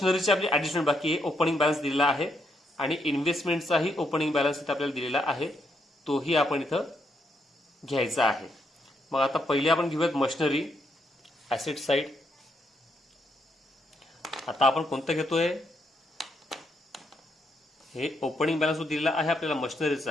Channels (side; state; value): both; normal; correlation 0.77